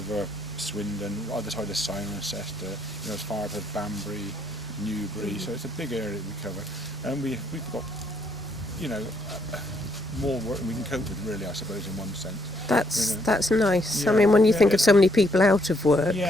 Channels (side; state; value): both; normal; correlation 0.71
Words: Swindon, either side of Cirencester, you know, as far as Banbury, Newbury. So it's a big area that we cover, and we've got, you know, more work than we can cope with, really, I suppose, in one sense. That's nice. Yeah, I mean, when you think of so many people out of work.